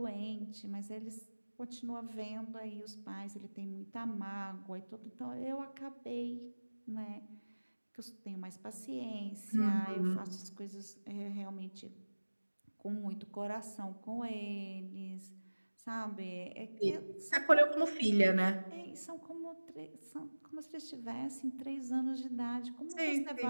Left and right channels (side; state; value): both; inverted; correlation -1.00